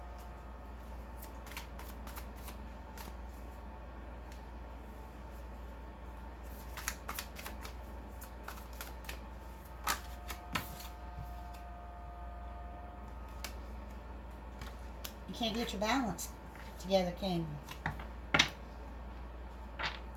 You can't get your balance together, can you?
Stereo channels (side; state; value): both; identical; correlation 1.00